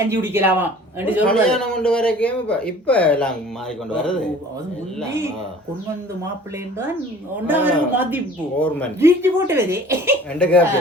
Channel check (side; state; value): both; normal; correlation 0.48